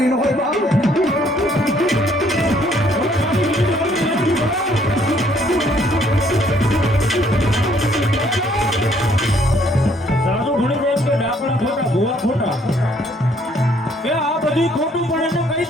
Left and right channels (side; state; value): both; normal; correlation 0.65